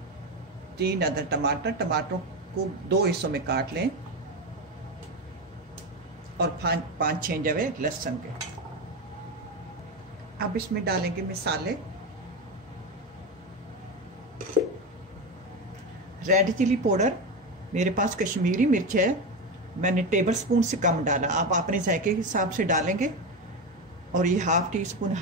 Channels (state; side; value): normal; both; correlation 0.17